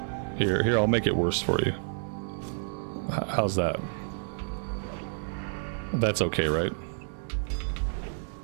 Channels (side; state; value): left; silent; digital silence